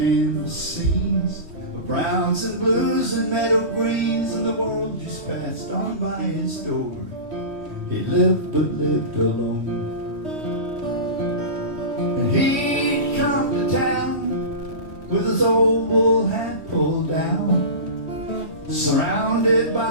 scenes of browns and blues and meadow greens, and the world just passed on by his door. He lived but lived alone. And he'd come to town with his old wool hat pulled down, surrounded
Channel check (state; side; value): late; left; 3.1 ms